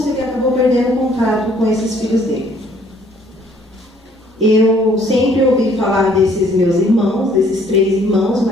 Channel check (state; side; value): normal; both; correlation 0.61